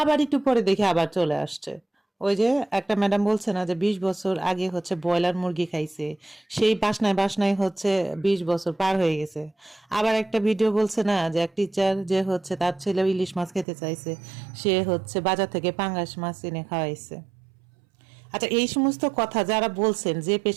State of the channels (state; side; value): drops out; left; at 13.7 s